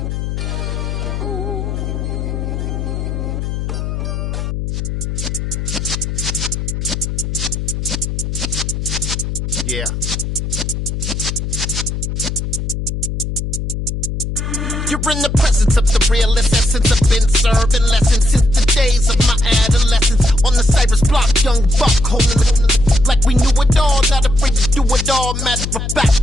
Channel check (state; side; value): noise; left; hum, 3 dB below the sound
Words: Yeah. You're in the presence of the realest essence. I've been serving lessons since the days of my adolescence. On the Cypress block, young buck holding it like we knew it all. Not afraid to do it all. Matter of